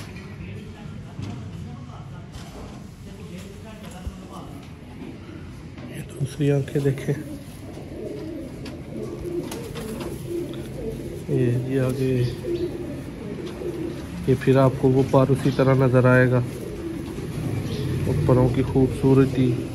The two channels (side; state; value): both; identical; correlation 1.00